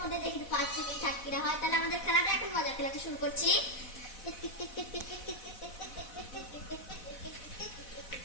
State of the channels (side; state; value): right; late; 4.1 ms